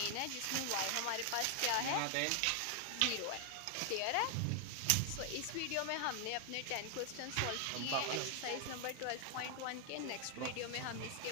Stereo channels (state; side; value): different; both; correlation 0.00